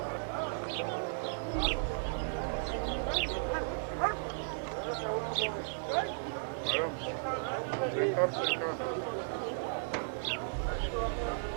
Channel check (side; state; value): left; silent; digital silence